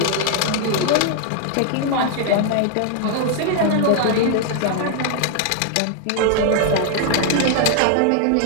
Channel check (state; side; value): different; both; correlation 0.00